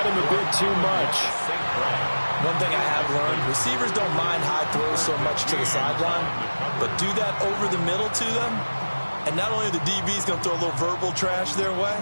him a bit too much. One thing I have learned, receivers don't mind high throws so much to the sideline, but do that over the middle to them, and not only are the DBs going to throw a little verbal trash their way,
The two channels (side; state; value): both; inverted; correlation -1.00